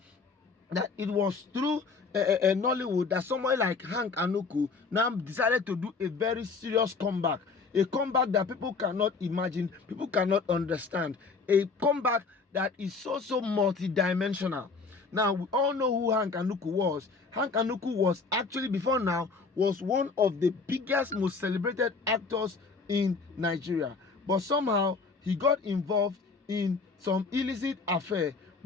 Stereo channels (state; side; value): quieter; right; 4.4 dB